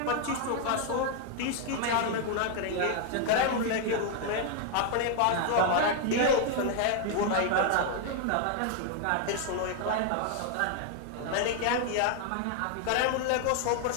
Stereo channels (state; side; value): different; both; correlation 0.00